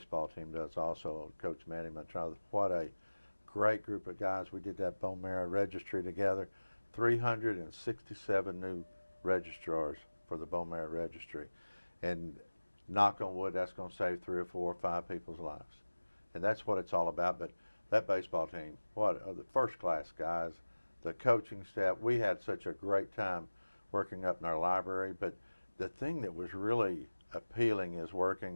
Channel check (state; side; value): inverted; both; correlation -1.00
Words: team does also. Coach Manny Mantrada, what a great group of guys. We did that bone marrow registry together. 367 new registrars for the bone marrow registry. And knock on wood, that's going to save 3 or 4 or 5 people's lives. And that's what it's all about. But that baseball team, what are the first class guys, the coaching staff. We had such a great time working up in our library. But the thing that was really appealing is